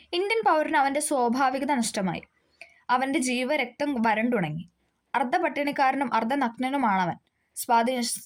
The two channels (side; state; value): both; identical; correlation 1.00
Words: ഇന്ത്യൻ പൗരന് അവന്റെ സ്വാഭാവികത നഷ്ടമായി. അവന്റെ ജീവരക്തം വരണ്ടുണങ്ങി. അർദ്ധപട്ടിണിക്കാരനും അർദ്ധനഗ്നനുമാണവൻ.